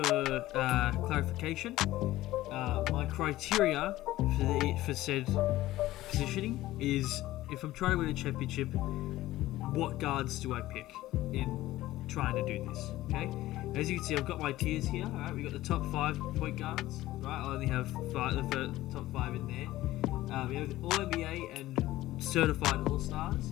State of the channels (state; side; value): quieter; right; 16.1 dB